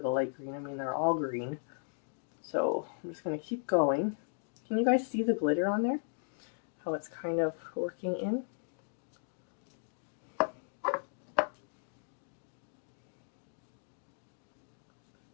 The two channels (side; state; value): right; silent; digital silence